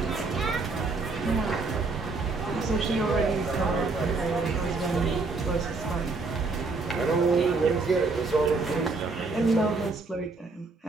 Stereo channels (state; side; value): quieter; left; 3.8 dB